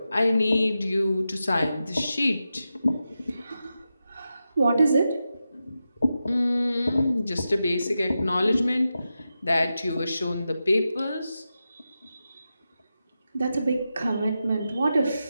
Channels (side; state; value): both; inverted; correlation -0.90